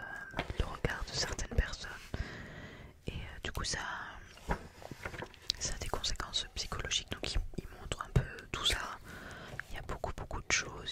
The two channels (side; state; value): both; identical; correlation 1.00